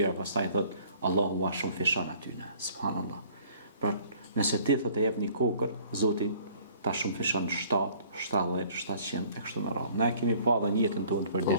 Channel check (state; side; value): inverted; both; correlation -0.55